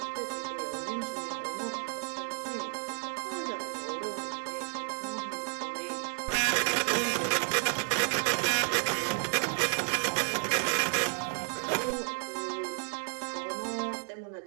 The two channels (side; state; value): left; silent; 56 dB below the other